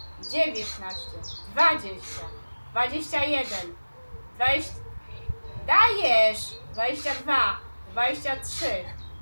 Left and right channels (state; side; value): inverted; both; correlation -1.00